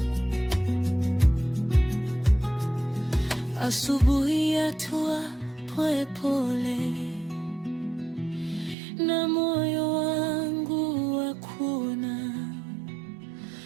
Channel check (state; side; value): drops out; left; at 8.8 s